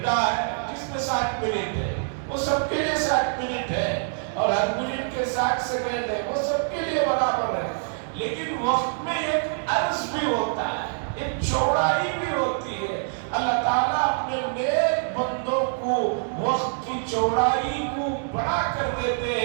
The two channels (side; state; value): left; silent; digital silence